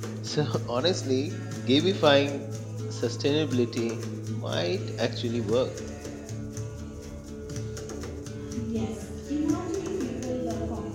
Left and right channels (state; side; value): identical; both; correlation 1.00